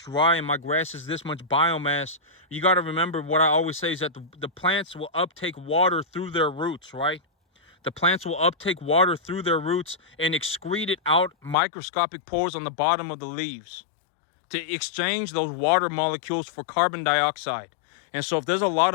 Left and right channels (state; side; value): drops out; right; at 11.6 s